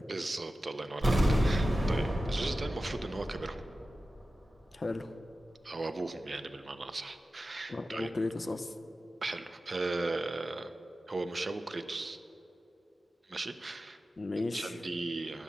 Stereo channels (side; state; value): both; normal; correlation 0.94